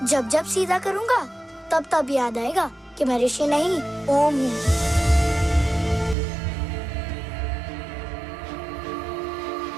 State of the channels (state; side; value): drops out; left; at 6.2 s